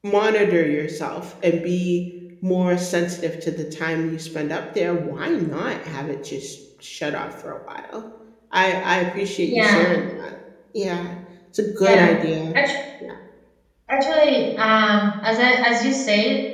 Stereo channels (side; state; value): both; identical; correlation 1.00